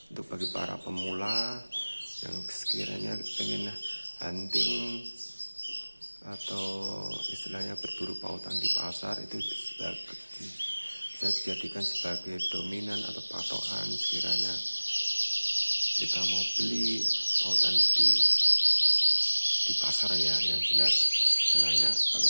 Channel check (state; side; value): inverted; both; correlation -1.00